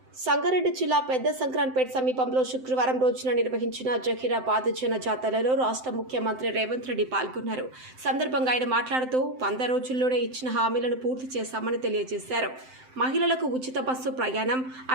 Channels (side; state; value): left; late; 7.8 ms